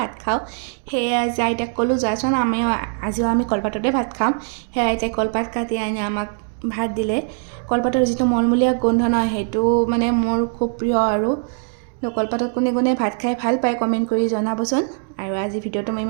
খাওঁ সেয়ে আজি আইতাক ক'লোঁ যাচোন আজিও আমি কলপাততে ভাত খাম সেয়ে আইতাই কলপাত কাটি আনি আমাক ভাত দিলে কলপাতৰ যিটো মলমলীয়া গোন্ধ নহয় সেইটো মানে মোৰ খুব প্ৰিয় আৰু কলপাতত কোনে কোনে ভাত খাই ভাল পায় কমেণ্ট কৰি জনাবচোন আৰু আজি ভিডিঅ'টো মই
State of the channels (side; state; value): left; silent; 65 dB below the other